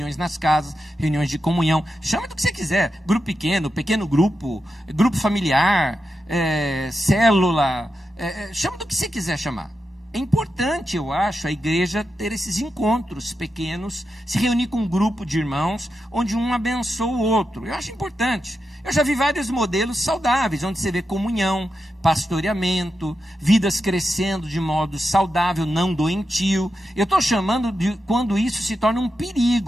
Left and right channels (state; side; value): normal; both; correlation 0.88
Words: de comunhão. Chama do que você quiser: grupo pequeno, pequeno grupo, grupo familiar, célula, chama do que você quiser chamar. É importante, eu acho, a igreja ter esses encontros pequenos, se reunir com um grupo de irmãos, onde um abençoa o outro. Eu acho importante. Eu já vi vários modelos saudáveis, onde você vê comunhão, pastoreamento, vidas crescendo de modo saudável, não doentio. Eu estou chamando de quando isso se torna um